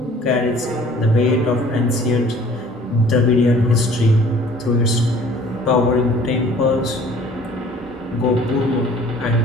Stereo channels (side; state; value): both; normal; correlation 0.52